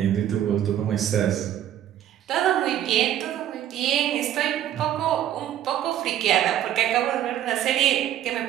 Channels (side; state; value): left; quieter; 11.5 dB